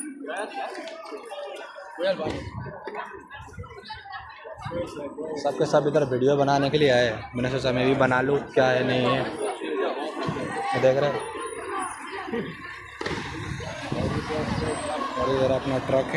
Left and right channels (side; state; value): both; identical; correlation 1.00